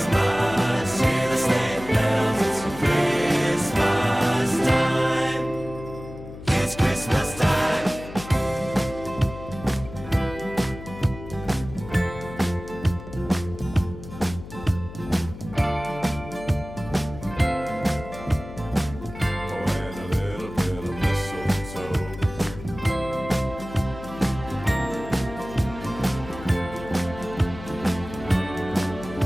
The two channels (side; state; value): left; noise; hum, 13 dB below the sound